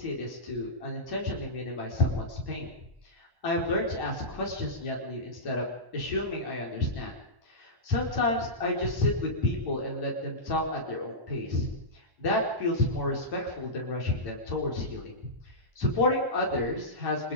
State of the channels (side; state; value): left; late; 1.1 ms